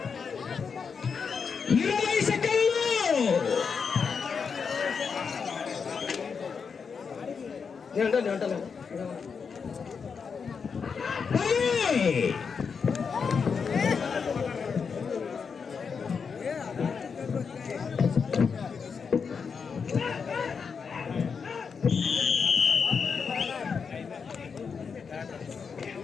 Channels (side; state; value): right; quieter; 5.9 dB